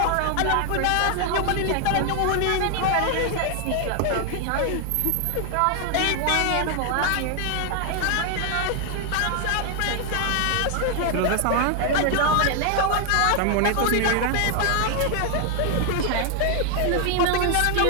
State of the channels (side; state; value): both; different; correlation 0.00